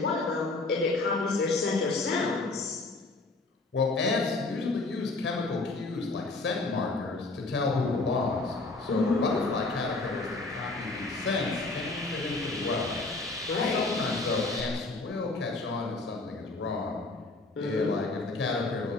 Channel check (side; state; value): right; quieter; 3.3 dB